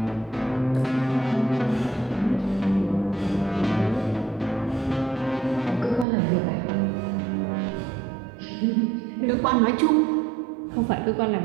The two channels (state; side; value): drops out; left; at 6.1 s